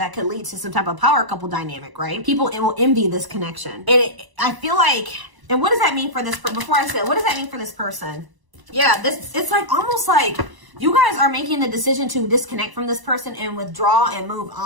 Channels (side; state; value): left; late; 1.0 ms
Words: could lead to some type of power couple dynamic, right? People will envy this connection. I feel like, and what does that mean for this, before I say it, what does that mean for this person? Yeah, it's like almost like you guys are making the decision to disconnect from this person and withdraw and move